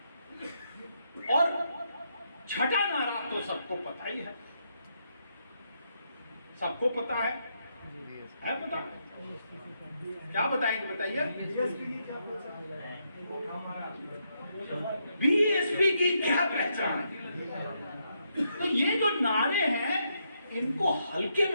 और छठा नारा तो सबको पता ही है, सबको पता है पता? क्या बताएंगे बताइए? बीएसपी की क्या पहचान है? तो ये जो नारे हैं इनको हल्के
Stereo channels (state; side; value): inverted; both; correlation -0.79